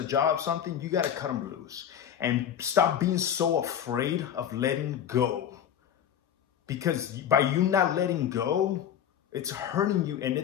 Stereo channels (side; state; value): right; quieter; 9.4 dB